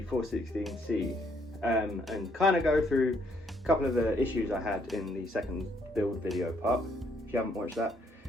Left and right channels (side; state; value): both; normal; correlation 0.69